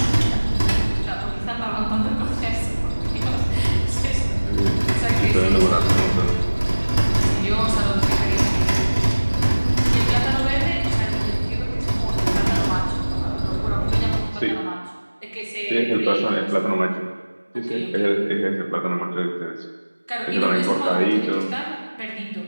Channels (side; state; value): both; inverted; correlation -1.00